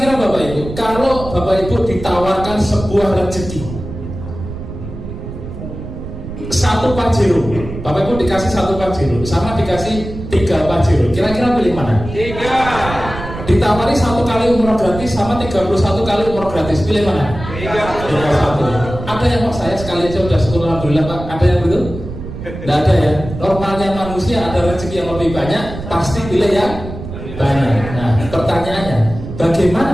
Bapak Ibu, kalau Bapak Ibu ditawarkan sebuah rezeki, satu Pajero, Bapak Ibu dikasih 1 Pajero sama dikasih 3 Pajero, kira-kira pilih mana? 3. Ditawari 1 kali umroh gratis sama 31 kali umroh gratis, pilih mana? 3. Ada yang mau saya sekali aja udah syukur alhamdulillah Pak, ada yang begitu? Tidak ada ya. Normalnya manusia ada rezeki yang lebih banyak, pasti pilih yang banyak. Nah, pertanyaannya,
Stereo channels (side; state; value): right; noise; rumble, 10 dB below the sound